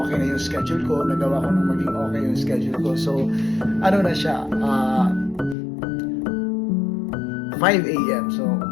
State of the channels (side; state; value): right; drops out; at 5.6 s